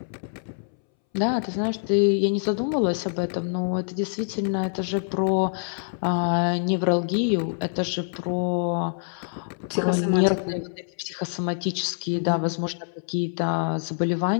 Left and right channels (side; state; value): right; silent; 61 dB below the other